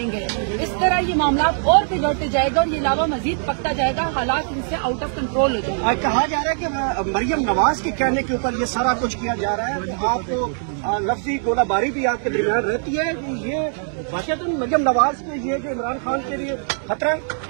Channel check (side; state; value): left; silent; 63 dB below the other